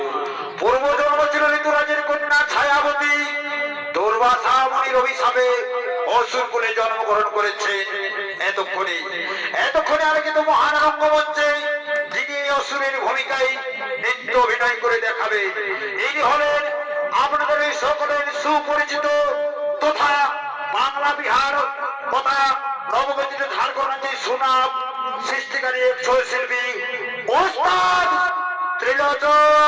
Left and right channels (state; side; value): identical; both; correlation 1.00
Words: পূর্বজন্ম ছিল ঋতুরাজের কন্যা ছায়াবতী। দুর্বাসা মুনির অভিশাপে অসুর কুলে জন্মগ্রহণ করেছেন। এতক্ষণে আলোকিত মহান রঙ্গমঞ্চে যিনি এই অসুরের ভূমিকায় নৃত্য অভিনয় করে দেখাবে ইনি হলেন আপনাদের এই সকলের সুপরিচিত তথা বাংলা বিহার তথা নবগঠিত ঝাড়খণ্ড সুনাম সৃষ্টিকারী ছৌ শিল্পী ওস্তাদ